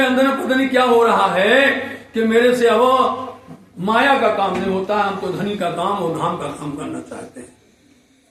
अंदर में पता नहीं क्या हो रहा है कि मेरे से अब माया का काम नहीं होता, हम तो धनी का काम और धाम का काम करना चाहते हैं,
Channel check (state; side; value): identical; both; correlation 1.00